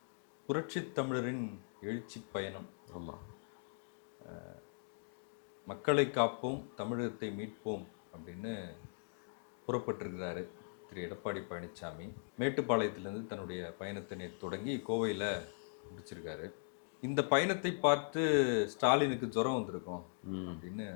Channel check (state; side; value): silent; right; digital silence